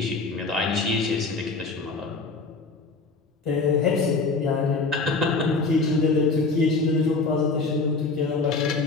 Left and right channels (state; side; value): quieter; right; 3.9 dB